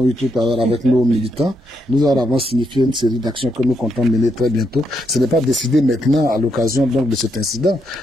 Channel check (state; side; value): normal; both; correlation 0.79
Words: eu tout à l'heure avec nos militants, nous avons signifié une série d'actions que nous comptons mener très bientôt. Ce n'est pas décidé maintenant à l'occasion donc de cet incident.